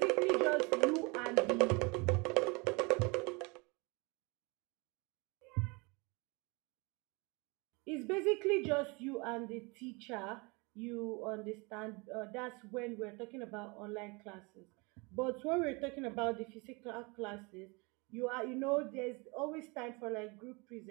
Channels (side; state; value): left; quieter; 28.4 dB